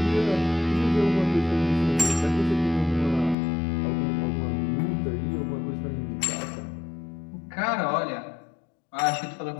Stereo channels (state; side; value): drops out; right; at 3.4 s